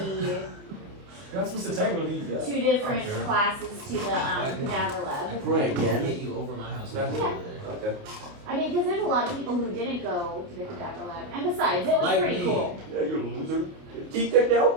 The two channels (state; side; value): late; left; 29 ms